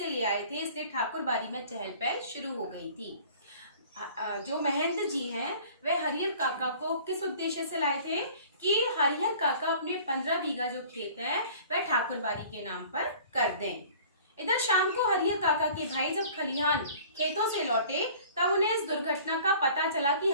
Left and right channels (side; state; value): both; inverted; correlation -0.48